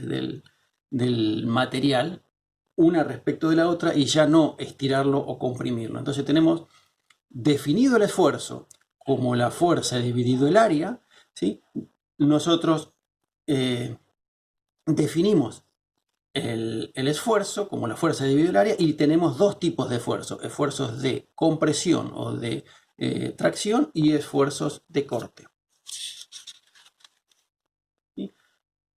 del material una respecto de la otra y ya no estirarlo o comprimirlo. Entonces tenemos definido el esfuerzo como la fuerza dividido el área, ¿sí? Nosotros definimos el esfuerzo como la fuerza dividido el área y tenemos dos tipos de esfuerzos: esfuerzos de compresión o de tracción y esfuerzos de corte. ¿Sí?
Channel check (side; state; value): both; identical; correlation 1.00